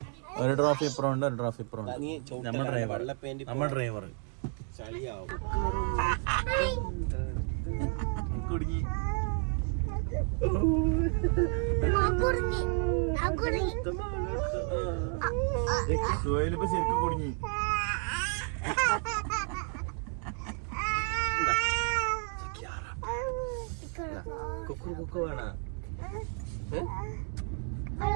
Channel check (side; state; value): left; quieter; 38.9 dB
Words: ഒരു ട്രോഫി ഇപ്പുറം ഉണ്ട്, ഒരു ട്രോഫി ഇപ്പുറം ഉണ്ട്. നമ്മൾ ഡ്രൈവർ കുടുങ്ങി. സുഹൈലിപ്പോ ശരിക്കും കുടുങ്ങി.